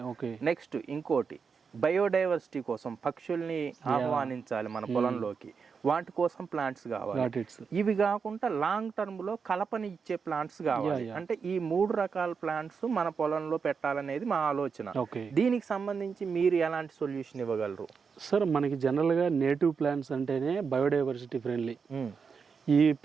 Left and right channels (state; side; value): quieter; left; 5.7 dB